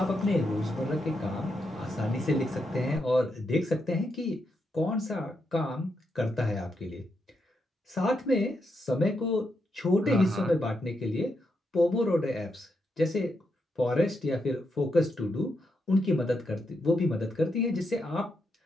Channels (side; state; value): both; normal; correlation 0.82